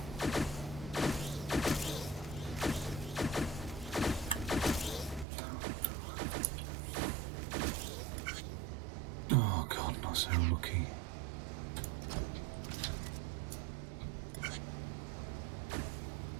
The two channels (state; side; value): drops out; left; at 5.2 s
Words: Oh god, not so lucky.